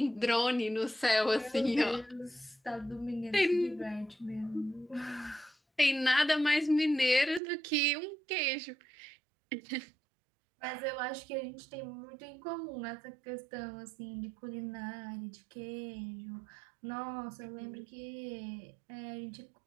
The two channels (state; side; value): drops out; left; at 7.4 s